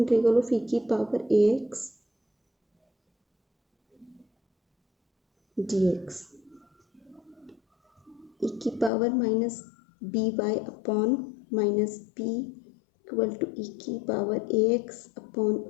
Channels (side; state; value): right; drops out; at 8.9 s